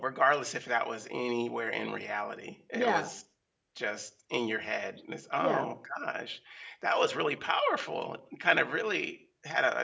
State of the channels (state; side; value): identical; both; correlation 1.00